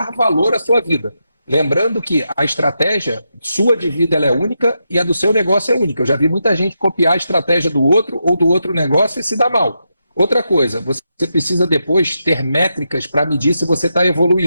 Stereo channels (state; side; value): inverted; both; correlation -0.85